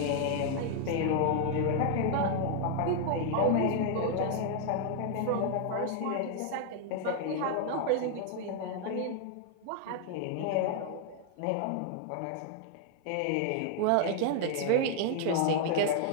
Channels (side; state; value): both; different; correlation 0.00